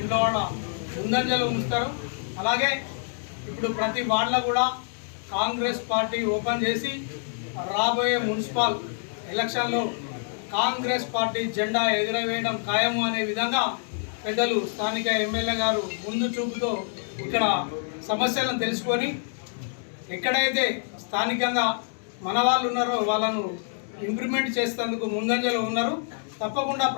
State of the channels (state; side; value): silent; right; digital silence